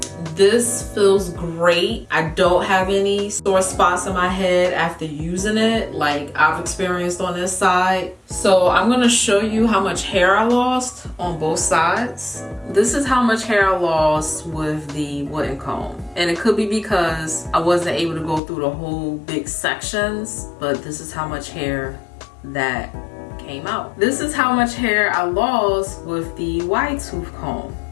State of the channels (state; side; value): drops out; right; at 18.4 s